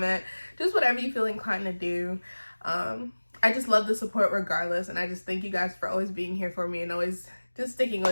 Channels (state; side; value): inverted; both; correlation -1.00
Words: Just whatever you feel inclined to do. I just love the support regardless, and I just thank you guys for always being here for me and always just sticking